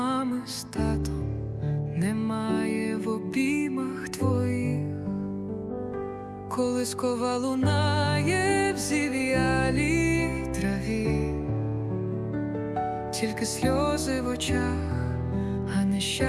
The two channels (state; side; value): identical; both; correlation 1.00